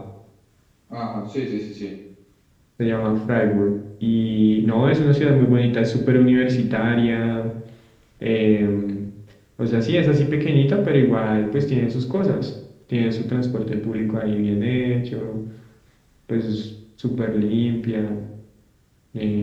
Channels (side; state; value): both; identical; correlation 1.00